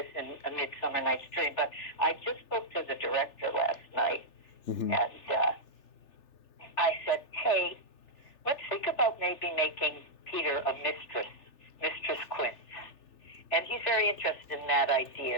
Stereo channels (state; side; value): late; right; 3.4 ms